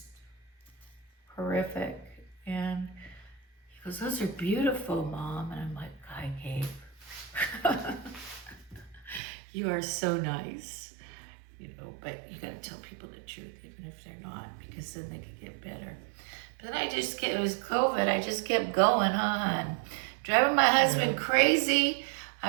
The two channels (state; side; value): drops out; left; at 9.2 s